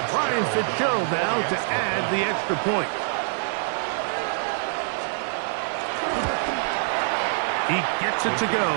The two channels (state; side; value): silent; left; 62 dB below the other